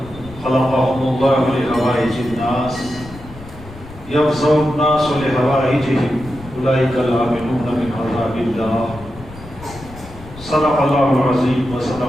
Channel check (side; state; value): left; noise; rumble, 17 dB below the sound